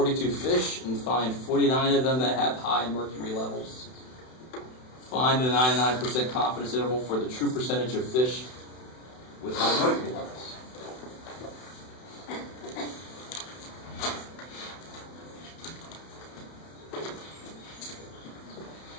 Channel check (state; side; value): late; right; 31 ms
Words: fish and find 49 of them that have high mercury levels. Find a 99% confidence interval for the true percentage of fish with high mercury levels.